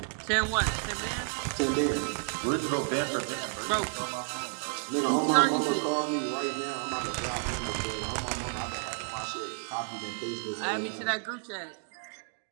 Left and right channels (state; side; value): silent; left; 55 dB below the other